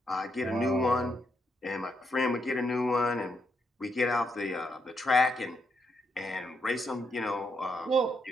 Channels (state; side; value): normal; both; correlation 0.78